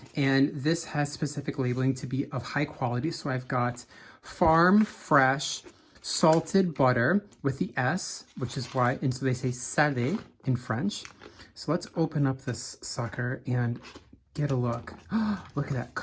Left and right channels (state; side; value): identical; both; correlation 1.00